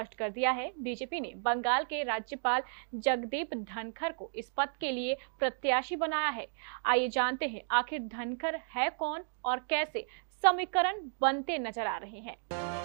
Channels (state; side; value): silent; left; digital silence